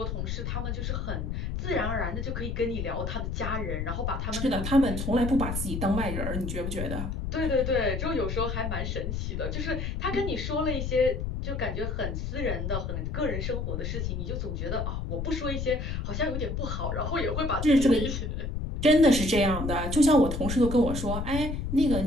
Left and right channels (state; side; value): noise; left; rumble, 3 dB below the sound